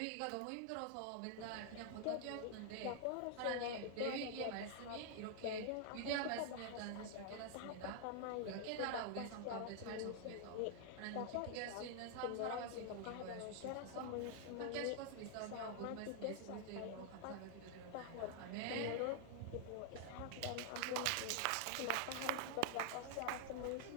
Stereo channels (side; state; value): both; different; correlation 0.00